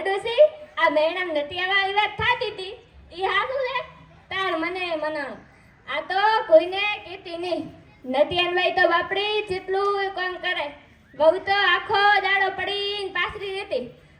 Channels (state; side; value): identical; both; correlation 1.00